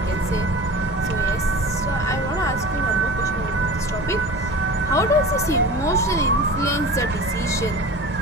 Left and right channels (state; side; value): normal; both; correlation 0.35